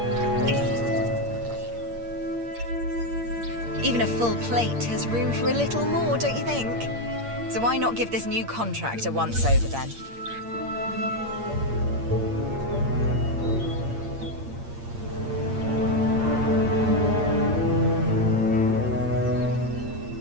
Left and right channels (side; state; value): left; late; 8.6 ms